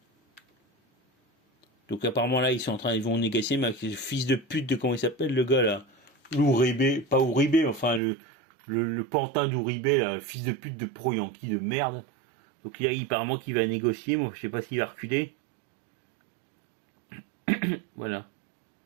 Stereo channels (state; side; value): drops out; left; at 8.0 s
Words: Donc apparemment là, ils vont négocier, mais avec le fils de pute de comment il s'appelle le gars là, Uribe, pas Uribe, mais enfin le pantin d'Uribe, là, le fils de pute de pro-yankee de merde. Donc il y a apparemment qu'il va négocier, moi je sais pas s'il va reculer. Voilà.